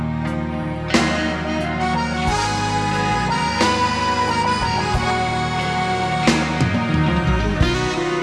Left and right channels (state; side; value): identical; both; correlation 1.00